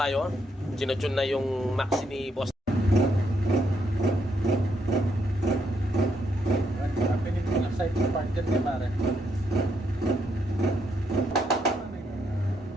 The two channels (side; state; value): both; normal; correlation 0.76